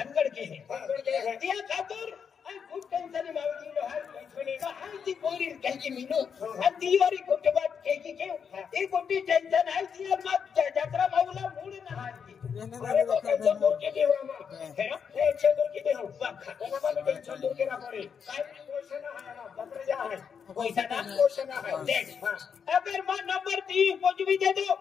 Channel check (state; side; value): quieter; right; 6.8 dB